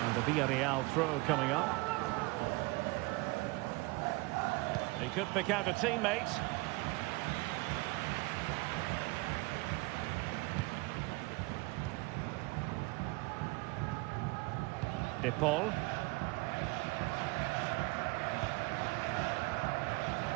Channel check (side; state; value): left; quieter; 24.4 dB